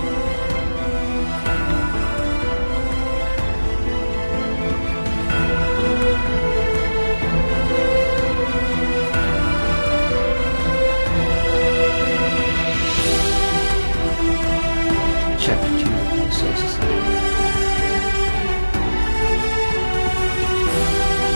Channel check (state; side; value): inverted; both; correlation -1.00